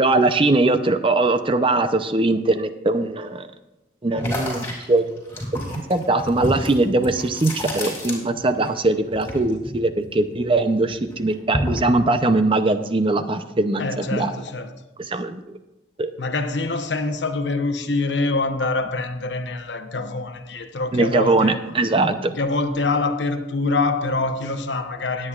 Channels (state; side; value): normal; both; correlation 0.43